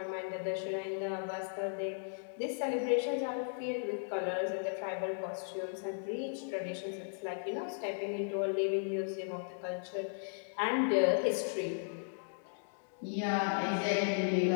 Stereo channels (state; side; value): silent; right; digital silence